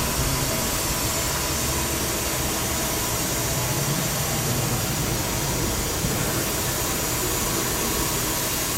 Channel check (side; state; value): both; identical; correlation 1.00